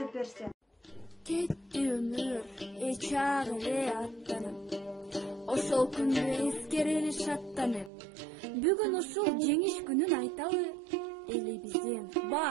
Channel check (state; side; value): drops out; left; at 7.9 s